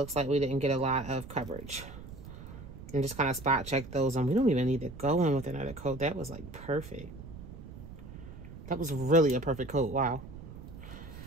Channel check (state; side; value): noise; right; rumble, 14 dB below the sound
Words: like we didn't get a lot of coverage. And just kind of spot check those. And we don't even need to go in with another coat. That was like perfect. That was really a perfect coat. Wow.